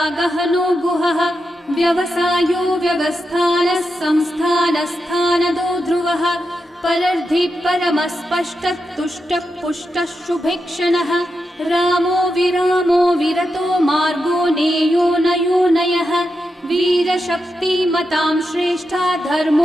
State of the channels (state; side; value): normal; both; correlation 0.87